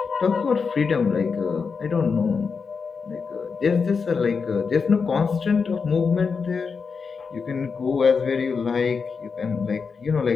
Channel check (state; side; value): quieter; right; 5.3 dB